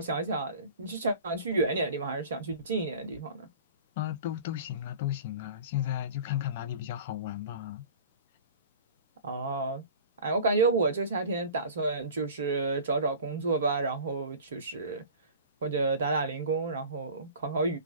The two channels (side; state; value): both; inverted; correlation -0.40